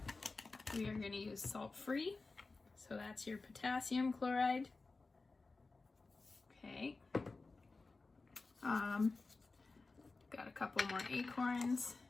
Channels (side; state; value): right; quieter; 3.8 dB